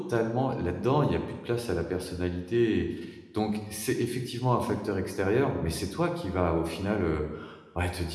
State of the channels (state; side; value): identical; both; correlation 1.00